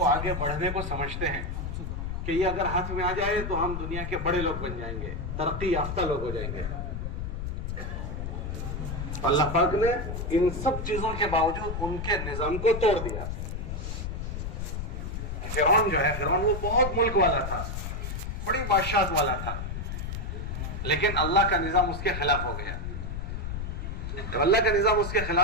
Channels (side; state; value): left; noise; rumble, 4 dB below the sound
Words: आगे बढ़ने को समझते हैं कि ये अगर हाथ में आ जाए तो हम दुनिया के बड़े लोग बन जाएंगे, तरक्की याफ्ता लोग हो जाएंगे। अल्लाह पाक ने इन सब चीजों के बावजूद उनके निजाम को तोड़ दिया। फिरौन जो है, फिरौन वो बहुत मुल्क वाला था, बड़ी बादशाहत वाला था, लेकिन अल्लाह का निजाम उसके खिलाफ हो गया। जब अल्लाह का निजाम उसके